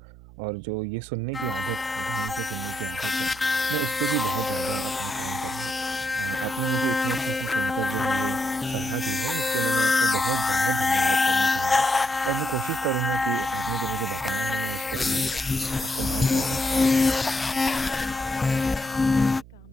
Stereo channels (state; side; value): noise; right; hum, 20 dB below the sound